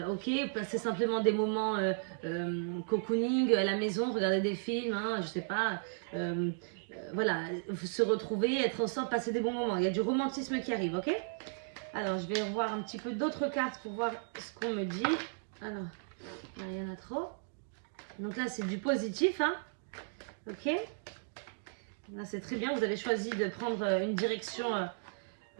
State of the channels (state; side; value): silent; left; digital silence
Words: Ok, passer simplement des moments cocooning à la maison, regarder des films, hein, je sais pas, voilà, se retrouver, être ensemble, passer des bons moments. Il y a du romantisme qui arrive, ok. Alors, je vais revoir un petit peu d'autres cartes pour voir ce qu'on me dit. Alors, il y en a trop. Donc là, c'est du positif, hein, ok. Là, c'est très bien, vous avez choisi de prendre une direction,